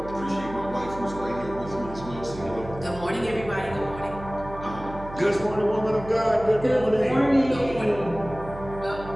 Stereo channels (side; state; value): right; noise; hum, 14 dB below the sound